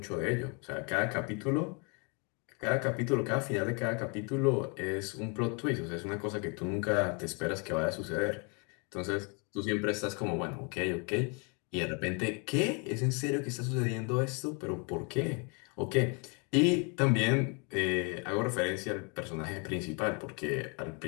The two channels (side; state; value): right; quieter; 34.3 dB